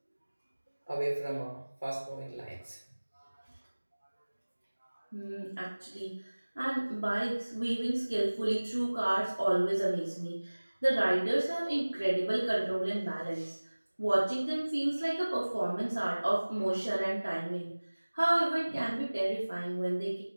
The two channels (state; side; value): inverted; both; correlation -1.00